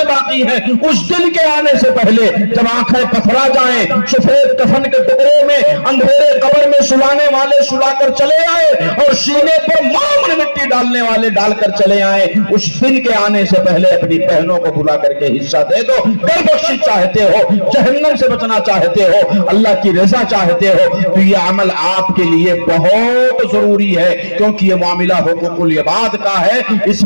باقی ہیں۔ اس دن کے آنے سے پہلے جب آنکھیں پتھرا جائیں، سفید کفن کے ٹکڑے میں اندھیرے قبر میں سلانے والے سلا کر چلے آئے، اور سینے پر معمر مٹی ڈالنے والے ڈال کر چلے آئے، اس دن کے آنے سے پہلے اپنی بہنوں کو بلا کر کے حصہ دے دو۔ گر بخشش چاہتے ہو، جہنم سے بچنا چاہتے ہو، اللہ کی رضا چاہتے ہو، تو یہ عمل آپ کے لیے بہت ضروری ہے، کیونکہ یہ معاملہ حقوق العباد کا ہے، اس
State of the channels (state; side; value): inverted; both; correlation -1.00